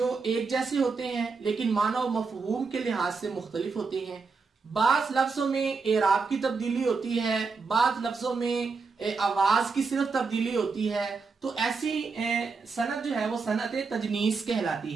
एक जैसे होते हैं लेकिन माना और मफहूम के लिहाज से मुख्तलिफ होते हैं। बाज लफ्जों में एराब की तब्दीली होती है, बाज लफ्जों में आवाज की सिर्फ तब्दीली होती है। तो ऐसी सनत जो है वो सनत तजनीस कहलाती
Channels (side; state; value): left; quieter; 4.6 dB